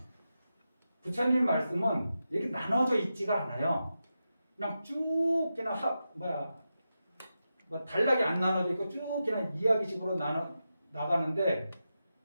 부처님 말씀은 이렇게 나눠져 있지가 않아요. 그냥 쭉 그냥 뭐 단락이 안 나눠져 있고 쭉 그냥 이야기식으로 나가는데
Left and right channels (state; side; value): inverted; both; correlation -0.90